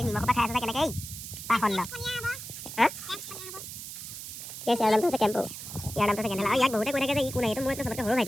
নিমখ পৰা খাই আছে কেনেকৈ পাখণ্ড হা ঠিক আছে ইয়াৰ নামটো আছে কেম্পো ইয়াৰ নামটো আছে কেনেলা ইয়াক বহুতে কৈ থাকে যে ই কোন এইটো মোৰ চবতকৈ সৰু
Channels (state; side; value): noise; right; hiss, 10 dB below the sound